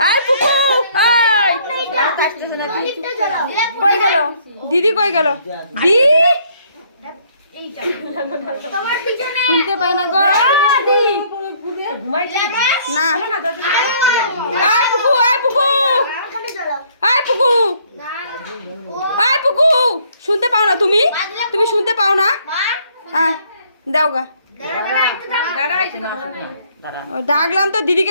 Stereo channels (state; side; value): inverted; both; correlation -0.63